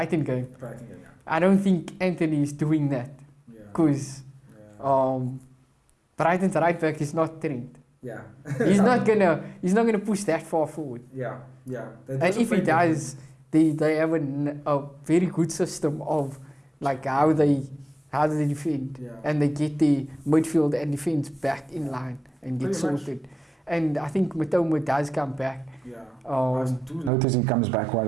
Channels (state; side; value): normal; both; correlation 0.95